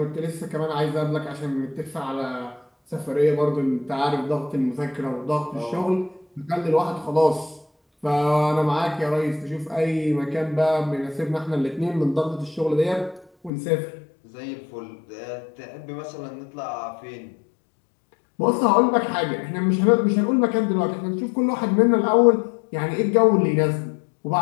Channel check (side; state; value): right; drops out; at 13.5 s